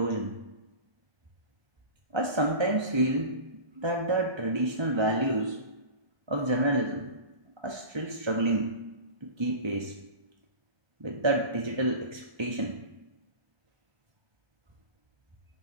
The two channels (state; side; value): late; left; 1.3 ms